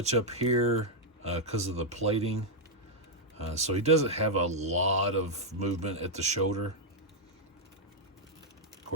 up here because of the plating. So he doesn't have a lot of movement at the shoulder. Of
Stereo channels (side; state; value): both; normal; correlation -0.03